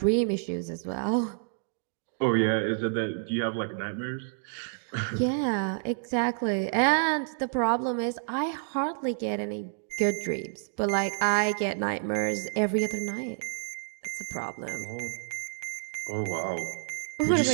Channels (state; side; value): silent; left; 58 dB below the other